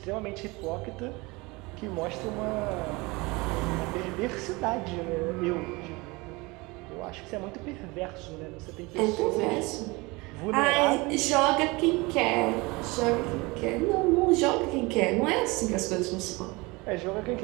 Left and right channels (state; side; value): quieter; left; 24.4 dB